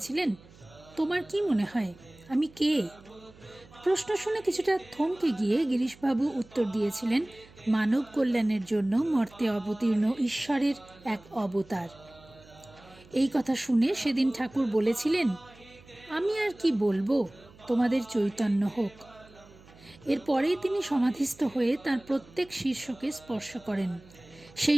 তোমার কি মনে হয় আমি কে? প্রশ্ন শুনে কিছুটা থমকে গিয়ে গিরিশবাবু উত্তর দিয়েছিলেন, মানব কল্যাণের জন্য মর্তে অবতীর্ণ ঈশ্বরের এক অবতার। এই কথা শুনে সেদিন ঠাকুর বলেছিলেন, আমি আর কি বলবো, তোমাদের চৈতন্য হোক। এরপরেই তিনি সমাধিস্থ হয়ে তার প্রত্যেক শীর্ষকে স্পর্শ করেন।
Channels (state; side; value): noise; right; hum, 24 dB below the sound